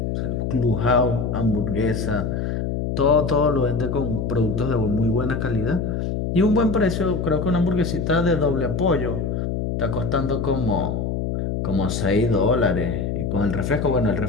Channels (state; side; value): noise; left; hum, 1 dB below the sound